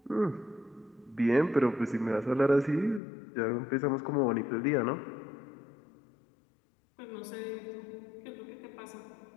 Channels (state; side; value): drops out; right; at 3.0 s